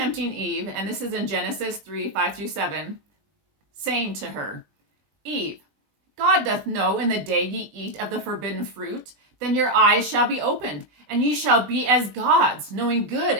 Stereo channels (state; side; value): late; left; 20 ms